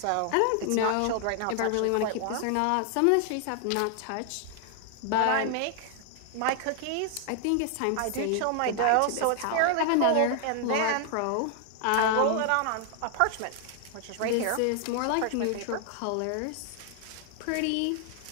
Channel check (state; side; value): different; both; correlation 0.00